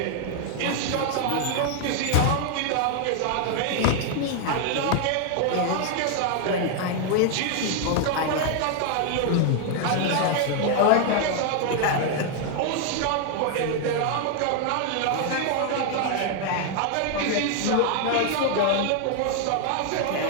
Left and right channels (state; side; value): different; both; correlation 0.00